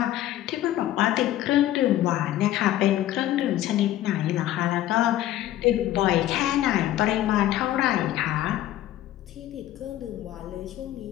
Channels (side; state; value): right; quieter; 13.6 dB